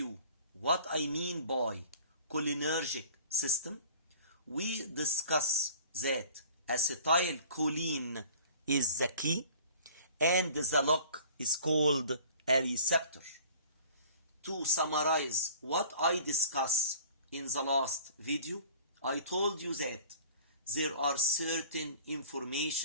what I mean by cholinergic system. We discuss that acetylcholine is the key and the lock is called a receptor. To summarize what I discussed in the last video, I told you that there are certain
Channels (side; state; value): both; inverted; correlation -0.46